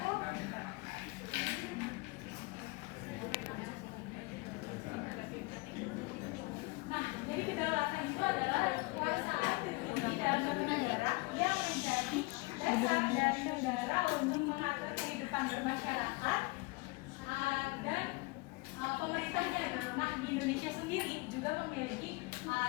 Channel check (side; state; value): right; quieter; 24.8 dB